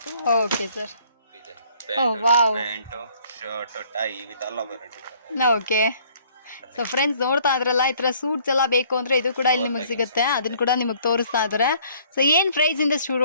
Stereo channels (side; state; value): both; inverted; correlation -0.59